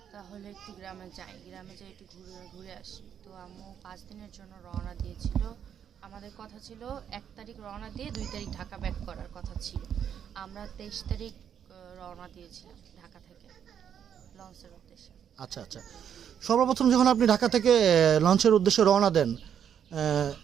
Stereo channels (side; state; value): left; quieter; 8.6 dB